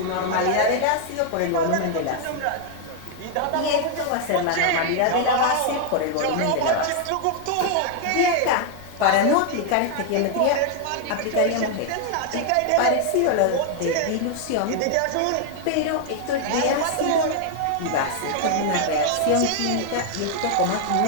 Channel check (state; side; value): different; both; correlation 0.00